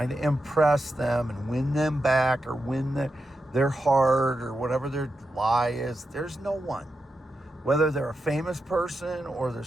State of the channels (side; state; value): both; normal; correlation 0.88